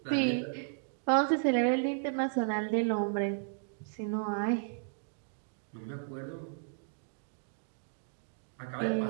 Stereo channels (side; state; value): left; silent; digital silence